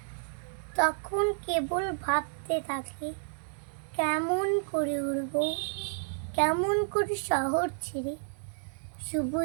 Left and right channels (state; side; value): silent; left; digital silence